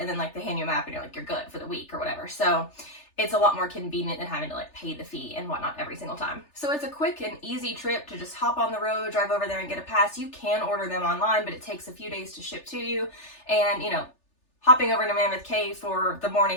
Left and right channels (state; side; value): late; right; 3.4 ms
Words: then like they hand you a map and you're like, you're good for the week or whatever. So it's a lot more convenient than having to like pay the fee and whatnot every single time. So it's a quick and easy trip to just hop on the road, drive over there and get a pass. You can order them online, but it takes a few days to ship to you. And hopping over to Mammoth Cave for the